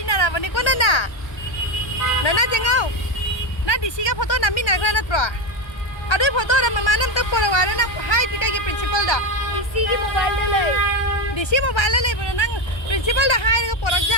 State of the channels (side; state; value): right; late; 1.3 ms